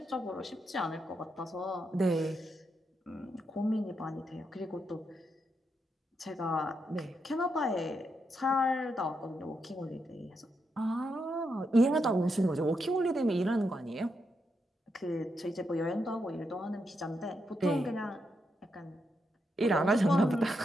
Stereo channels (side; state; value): both; normal; correlation 0.82